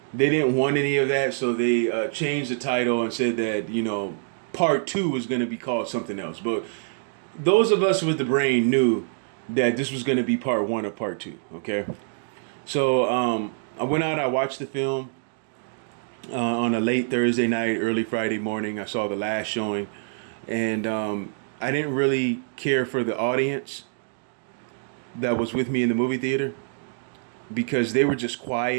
They didn't want any of that, so they changed the title and said that, part two was going to be called something else. But those of us with the brain knew that this was going to be part one of part two. Okay, so I went out, I watched the film on a late Thursday night, early Friday morning. I saw the last showing, and I didn't really care for the audience that was with me in the movie theater because they were just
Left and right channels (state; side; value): silent; left; digital silence